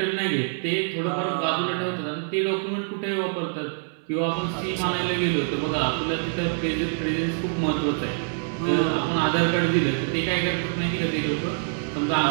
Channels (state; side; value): silent; left; 60 dB below the other